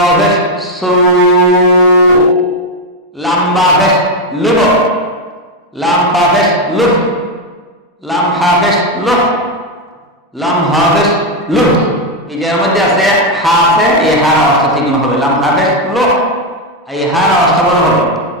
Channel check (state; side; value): normal; both; correlation 0.06